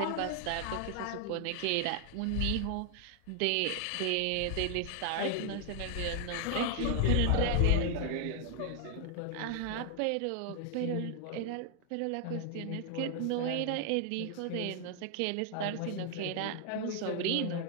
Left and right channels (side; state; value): both; different; correlation 0.00